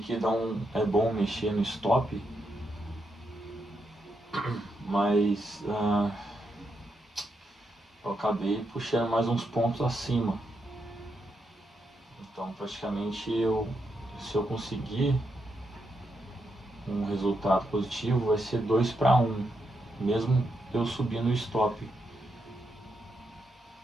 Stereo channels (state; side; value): normal; both; correlation 0.82